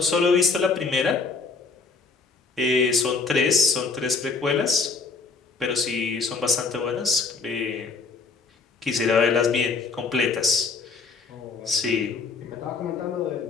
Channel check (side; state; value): right; quieter; 4.4 dB